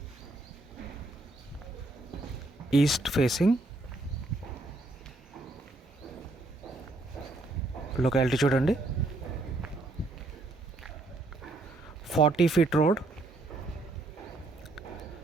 East facing. లొకాలిటీ చూడండి, 40 feet road,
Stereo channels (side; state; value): left; quieter; 3.1 dB